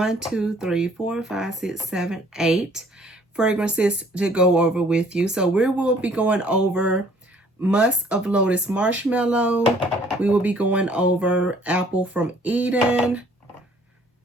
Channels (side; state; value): both; normal; correlation 0.58